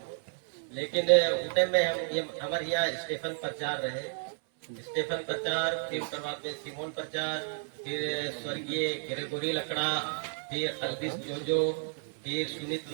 लेकिन उठे में हम ये हमारे यहाँ स्टेफन प्रचार रहे, स्टेफन प्रचार, फिर उसके बाद में सिमोन प्रचार, फिर स्वर्गीय ग्रेगोरी लकड़ा, फिर अल्बिस जोजो, फिर सुनीत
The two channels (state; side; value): silent; left; 57 dB below the other